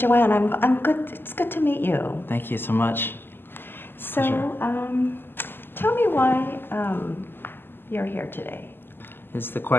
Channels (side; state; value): right; late; 0.099 ms